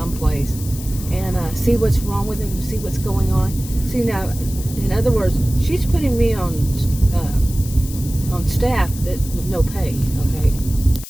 and see what's wrong with them, see what's going on. See, now, in other words, she's putting me on staff with no pay, okay?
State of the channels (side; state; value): left; noise; hiss, 13 dB below the sound